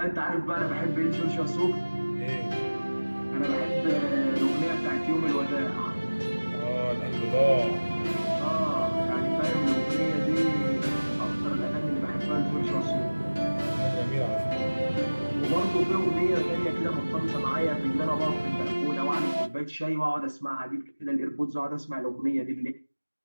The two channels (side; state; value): both; inverted; correlation -1.00